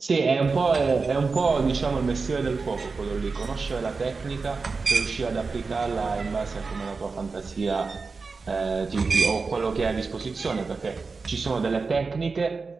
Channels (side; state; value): left; quieter; 4.4 dB